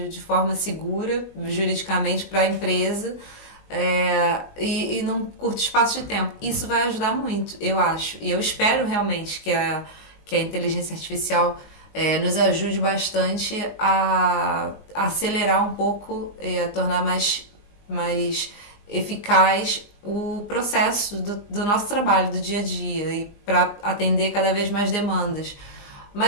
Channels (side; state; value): right; late; 19 ms